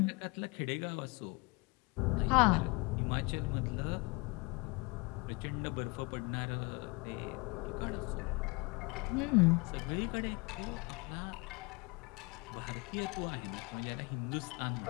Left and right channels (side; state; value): right; quieter; 28.1 dB